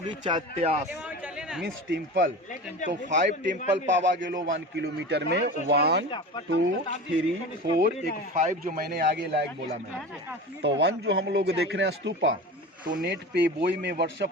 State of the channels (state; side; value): normal; both; correlation 0.32